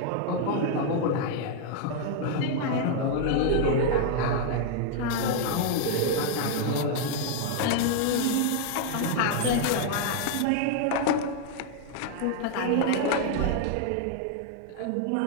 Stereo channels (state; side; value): different; both; correlation 0.00